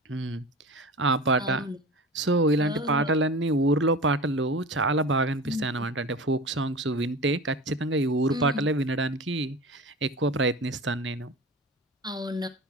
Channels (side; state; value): both; normal; correlation 0.33